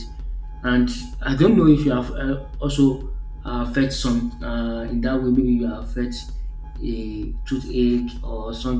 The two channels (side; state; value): both; identical; correlation 1.00